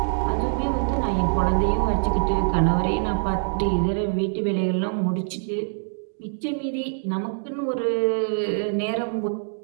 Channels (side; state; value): left; silent; digital silence